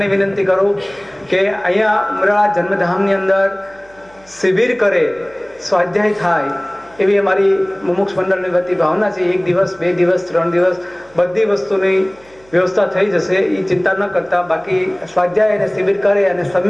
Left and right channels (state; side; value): noise; right; hum, 29 dB below the sound